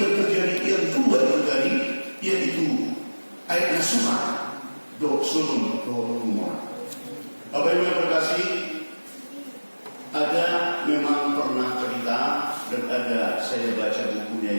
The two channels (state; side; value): inverted; both; correlation -1.00